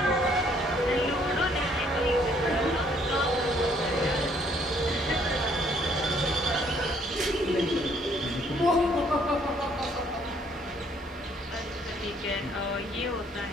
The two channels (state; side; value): normal; both; correlation 0.64